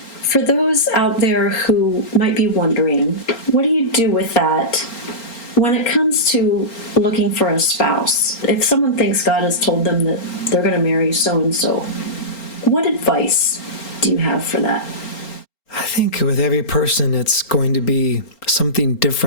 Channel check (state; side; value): late; right; 4.3 ms